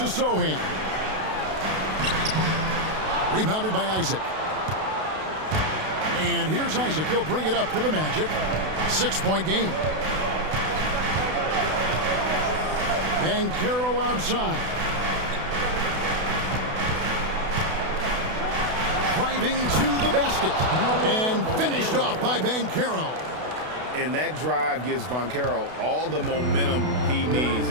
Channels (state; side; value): late; left; 32 ms